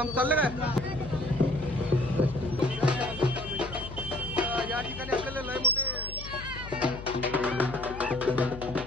चाललं काय? या ठिकाणी आपल्याला लय मोठे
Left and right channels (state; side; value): noise; left; hum, 12 dB below the sound